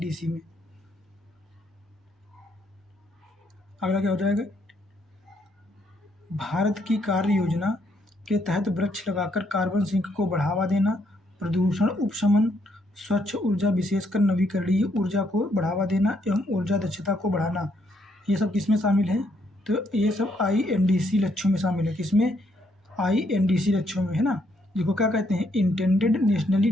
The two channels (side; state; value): both; normal; correlation 0.73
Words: में। अगला क्या हो जाएगा? भारत की कार्य योजना के तहत वृक्ष लगाकर कार्बन सिंक को बढ़ावा देना, प्रदूषण उपशमन, स्वच्छ ऊर्जा विशेषकर नवीकरणीय ऊर्जा को बढ़ावा देना एवं ऊर्जा दक्षता को बढ़ाना, ये सब किसमें शामिल है? तो ये सब INDC लक्ष्यों में शामिल है। किसमें? INDC लक्ष्यों में, है ना, जिसको क्या कहते हैं? Intended nationally